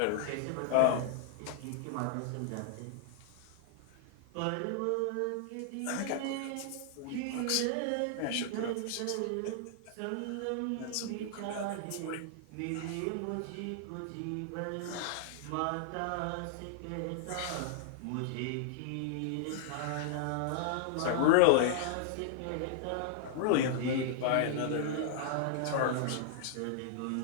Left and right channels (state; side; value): different; both; correlation -0.01